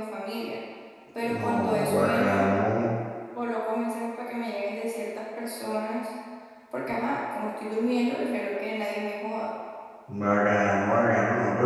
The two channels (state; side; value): identical; both; correlation 1.00